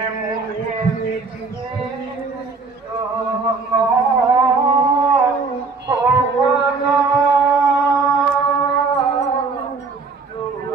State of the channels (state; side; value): quieter; left; 4.3 dB